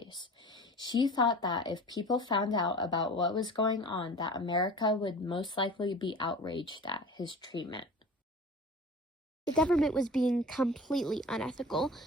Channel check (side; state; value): both; normal; correlation 0.39